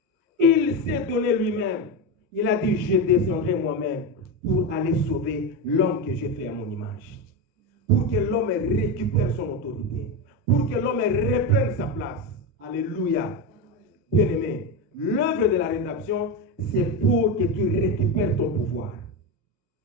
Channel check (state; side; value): normal; both; correlation 0.15